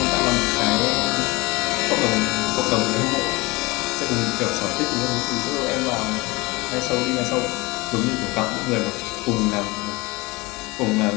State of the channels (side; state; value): right; quieter; 23.7 dB